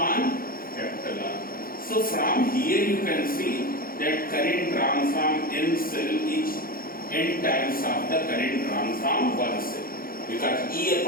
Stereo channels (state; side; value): late; right; 0.42 ms